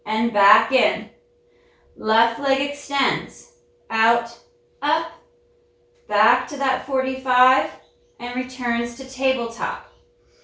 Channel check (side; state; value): both; identical; correlation 1.00